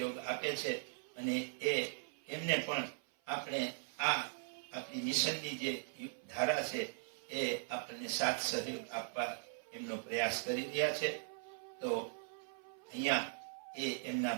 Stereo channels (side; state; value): left; silent; 51 dB below the other